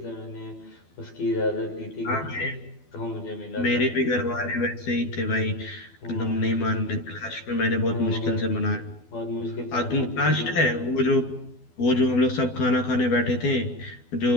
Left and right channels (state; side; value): late; right; 12 ms